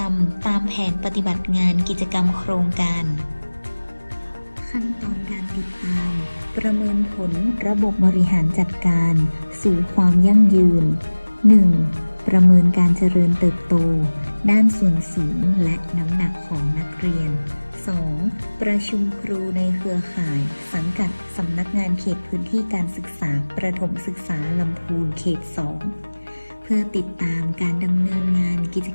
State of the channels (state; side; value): inverted; both; correlation -1.00